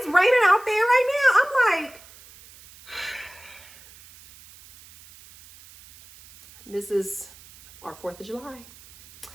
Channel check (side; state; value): right; noise; hiss, 22 dB below the sound